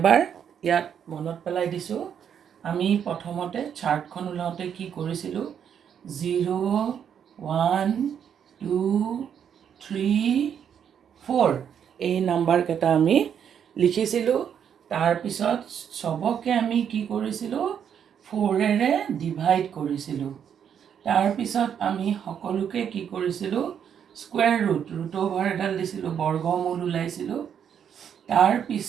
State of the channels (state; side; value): quieter; left; 8.3 dB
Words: ইয়াত মনত পেলাই দিছোঁ। আমি প্ৰথমতে চাৰ্টখন ওলাওঁতে কি কৰিছিলোঁ, 0, 1, 2, 3, 4 এই নাম্বাৰকেইটা আমি লিখিছিলোঁ। তাৰপিছত চবকে আমি কি কৰিছিলোঁ, 4ৰে ডিভাইড কৰিছিলোঁ। তাৰপিছত আমি সকলোকে কি কৰিছিলোঁ, স্কুৱেৰ ৰুট অভাৰ এডাল দিছিলোঁ, বৰ্গমূল ওলাইছিলোঁ।